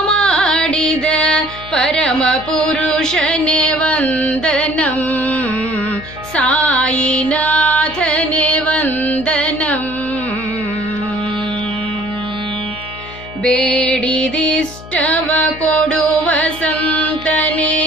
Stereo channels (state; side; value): noise; left; hum, 16 dB below the sound